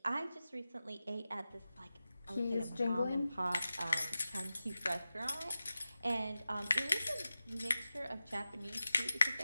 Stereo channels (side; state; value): both; inverted; correlation -0.93